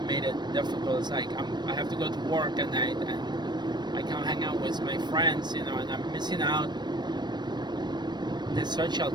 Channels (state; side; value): late; left; 0.21 ms